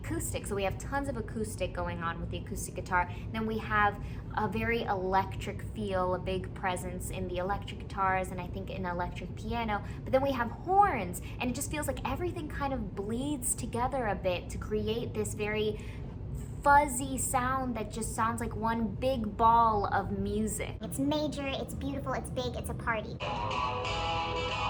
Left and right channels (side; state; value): both; identical; correlation 1.00